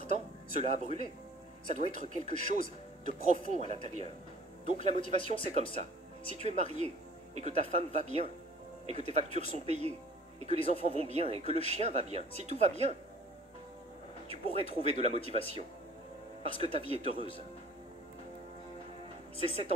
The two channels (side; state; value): both; normal; correlation 0.51